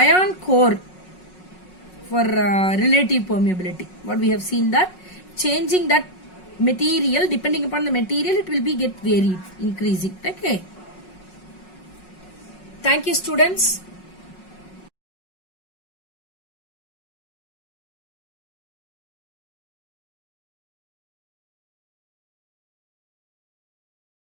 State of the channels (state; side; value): late; right; 5.4 ms